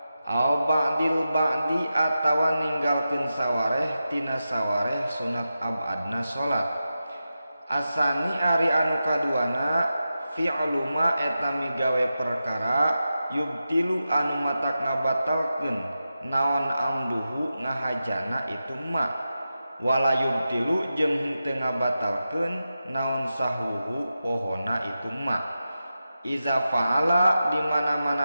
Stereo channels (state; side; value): inverted; both; correlation -0.91